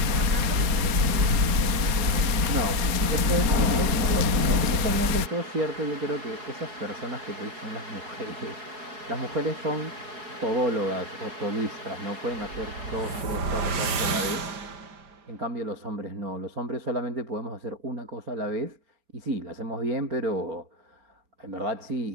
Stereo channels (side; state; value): left; late; 4.3 ms